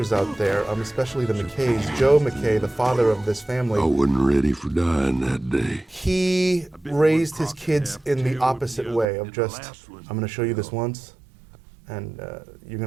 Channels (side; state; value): left; drops out; at 9.1 s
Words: out there, especially the McKays, Joe McKay, the father of this family, I wasn't ready for dying that day. He raised his kids in the opposite way of just, I'm gonna show you this once, and you're